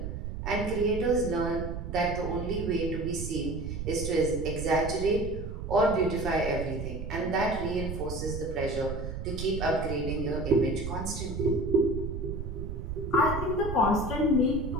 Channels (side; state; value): right; noise; rumble, 6 dB below the sound